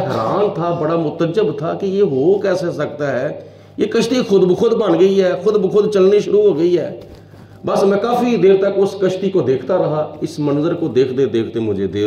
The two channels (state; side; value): identical; both; correlation 1.00